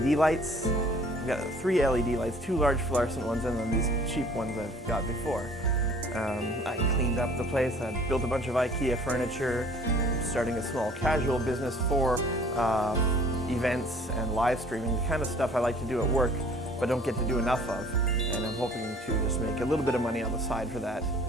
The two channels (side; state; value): both; normal; correlation 0.52